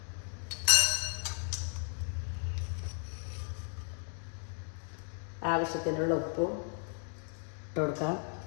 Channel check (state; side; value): silent; right; 55 dB below the other